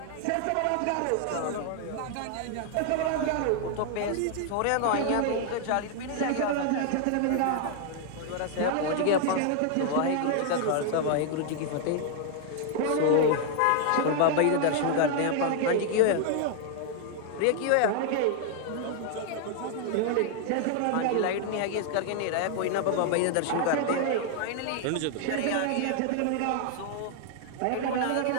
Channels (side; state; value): both; different; correlation 0.00